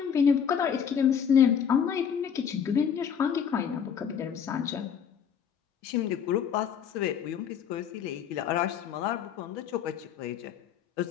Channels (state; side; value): quieter; right; 7.8 dB